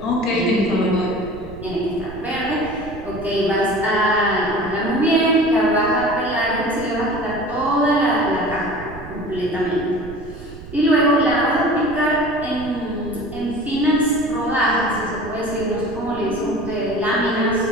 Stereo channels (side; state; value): right; noise; rumble, 15 dB below the sound